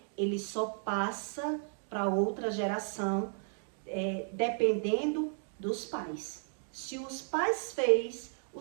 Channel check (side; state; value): left; silent; 55 dB below the other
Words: ele só passa para outra geração, dependendo dos pais. Se os pais fez,